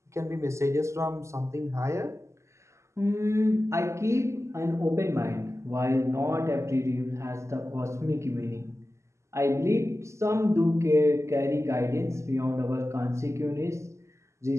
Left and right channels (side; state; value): left; late; 0.13 ms